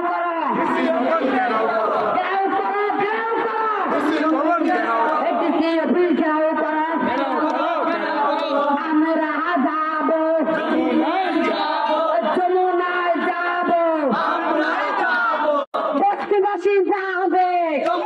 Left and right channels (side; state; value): both; identical; correlation 1.00